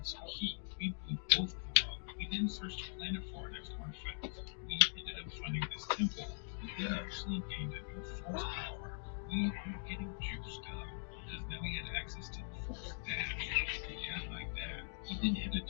some heat. We blew both of them up. We then searched the planet for our next artifact. We ended up finding this temple. We actually gained a new force power. We were getting juiced up because now we had access to the force dash. Yeah, like that. We then headed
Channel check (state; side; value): silent; right; digital silence